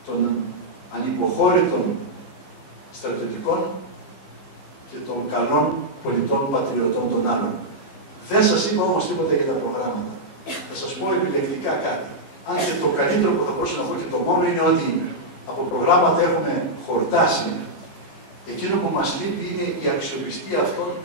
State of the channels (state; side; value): late; right; 15 ms